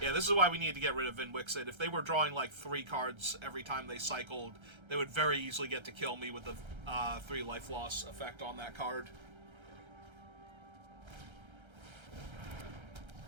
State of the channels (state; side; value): late; left; 1.3 ms